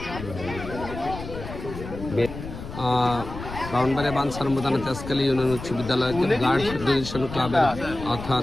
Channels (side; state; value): left; noise; rumble, 10 dB below the sound